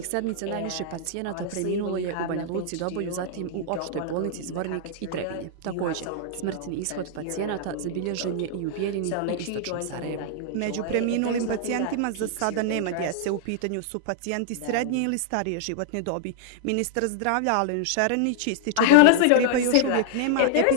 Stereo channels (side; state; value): both; different; correlation -0.01